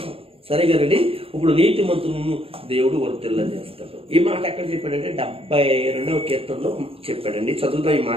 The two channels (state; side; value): late; left; 0.27 ms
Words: సరే కదండి. ఇప్పుడు నీతిమంతులను దేవుడు వర్ధిల్లా చేస్తాడు. ఈ మాట ఎక్కడ చెప్పాడంటే 72వ కీర్తనలో చెప్పాడండి. చదువుతాం ఈ